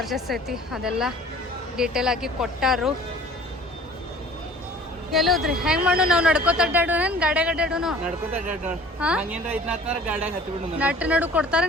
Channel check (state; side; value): normal; both; correlation 0.48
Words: ಐತಿ ಅದೆಲ್ಲ ಡೀಟೇಲ್ ಆಗಿ ಕೊಟ್ಟಾರು. ಎಲ್ಲೋದ್ರಿ ಹೆಂಗ್ ಮಾಡು? ನಾವು ನಡ್ಕೋತ ಅಡ್ಡಾಡೋಣ, ಗಾಡ್ಯಾಗ ಅಡ್ಡಾಡೋನು? ನಟ್ಟು ನಡು